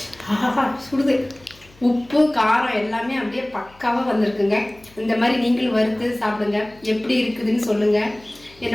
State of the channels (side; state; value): left; noise; hum, 27 dB below the sound